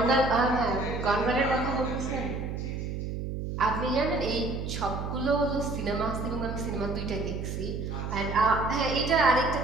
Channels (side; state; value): right; noise; hum, 4 dB below the sound